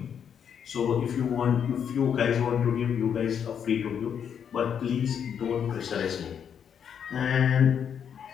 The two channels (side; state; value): right; quieter; 8.0 dB